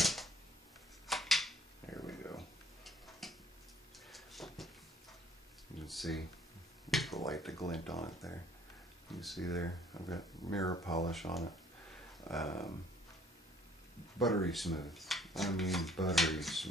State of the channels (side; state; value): both; normal; correlation 0.59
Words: There we go. You can see the light, the glint on it there. You can see there, I've got mirror polish on it. Buttery smooth. I mean buttery